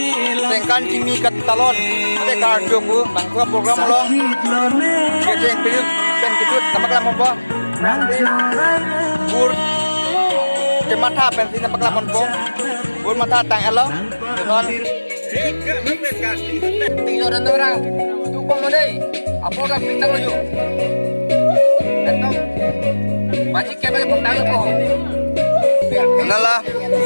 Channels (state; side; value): inverted; both; correlation -1.00